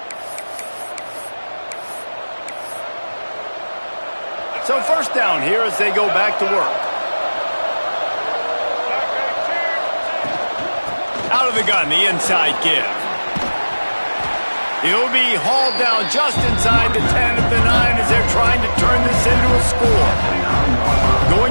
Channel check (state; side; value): inverted; both; correlation -1.00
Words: So first down here as they go back to work. Out of the gun, the inside give. He'll be hauled down just inside the 10 at the 9 as they're trying to turn this into a score.